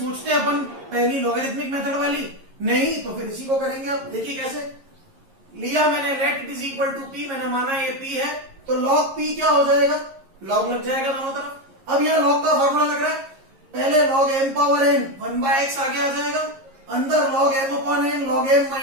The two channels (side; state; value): left; late; 11 ms